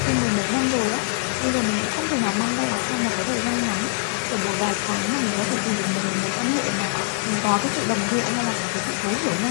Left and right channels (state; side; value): silent; right; 63 dB below the other